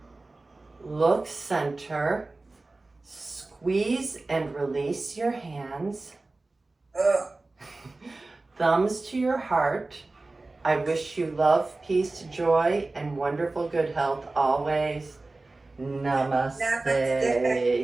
Look center. Squeeze and release your hands. Thumbs to your heart. I wish you love, peace, joy, and wonderful good health always. Namaste.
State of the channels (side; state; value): left; quieter; 3.2 dB